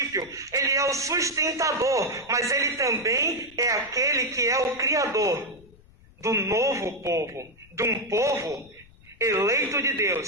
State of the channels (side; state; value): left; noise; rumble, 26 dB below the sound